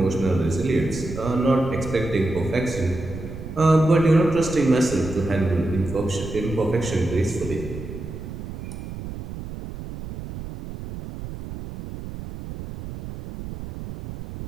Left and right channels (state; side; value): noise; right; rumble, 10 dB below the sound